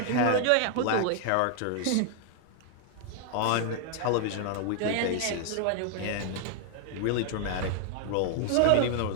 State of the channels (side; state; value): both; different; correlation 0.00